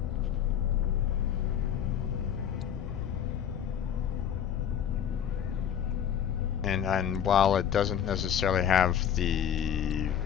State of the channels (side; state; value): right; quieter; 9.1 dB